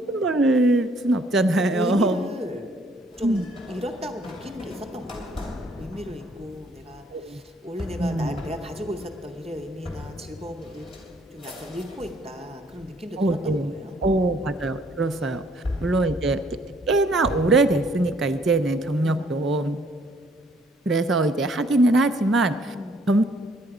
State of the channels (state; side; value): normal; both; correlation 0.63